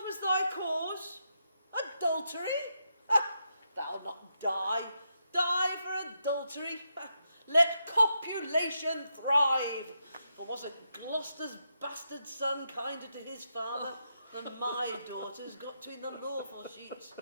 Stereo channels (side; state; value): both; inverted; correlation -0.83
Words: was thy cause? Adultery? Thou'lt not die. Die for adultery. Let copulation thrive. Or wasn't Gloucester's bastard son kinder to his father than my daughters got to in the lawful sheets?